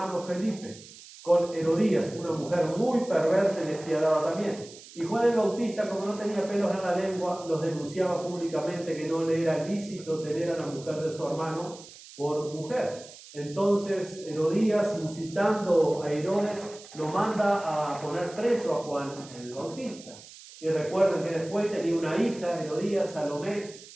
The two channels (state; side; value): noise; right; hiss, 18 dB below the sound